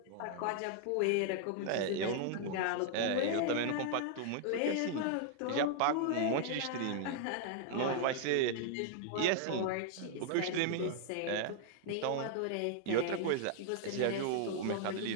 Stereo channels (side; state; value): both; different; correlation -0.01